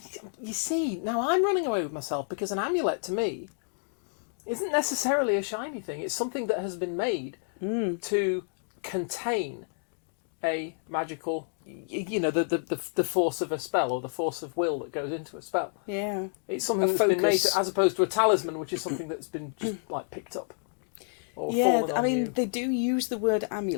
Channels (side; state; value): right; silent; digital silence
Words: You see, now I'm running away with myself because an amulet, to me, isn't necessarily a shiny thing. It's something that has been made to contain a magical... You know, the force of a spell or the force of will that goes into a spell. Yeah. It's something that's been made as opposed to a talisman, which is something that's been just, like, picked up. Or fallen on I mean, you. they do use the word